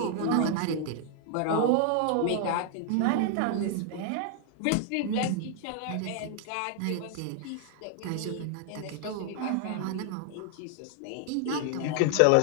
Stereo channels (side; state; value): both; different; correlation 0.00